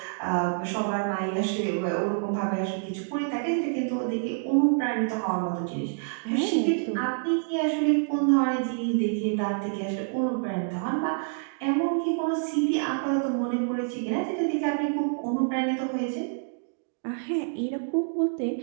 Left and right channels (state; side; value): silent; left; digital silence